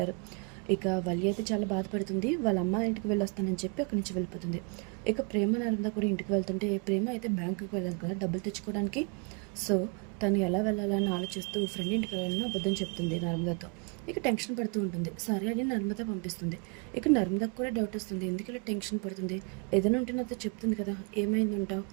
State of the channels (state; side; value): quieter; left; 35.3 dB